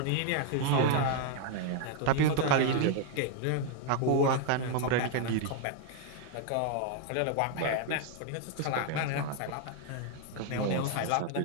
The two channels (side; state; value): both; different; correlation 0.00